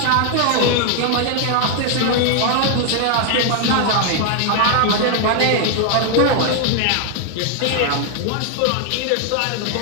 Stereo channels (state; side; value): different; both; correlation 0.00